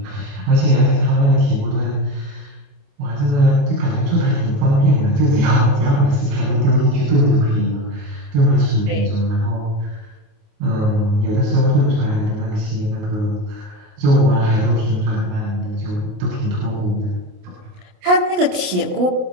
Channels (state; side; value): late; left; 28 ms